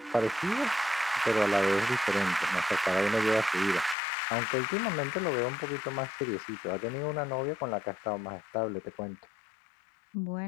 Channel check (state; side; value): drops out; right; at 4.0 s